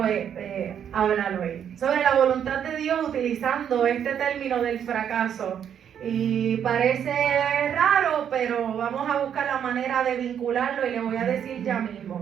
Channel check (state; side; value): quieter; left; 8.8 dB